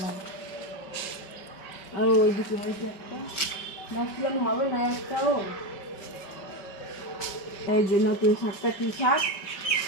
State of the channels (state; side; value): late; right; 5.2 ms